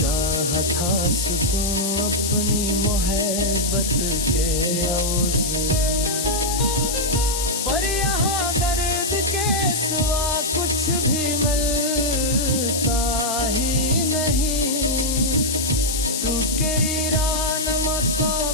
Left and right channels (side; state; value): left; noise; hiss, 2 dB below the sound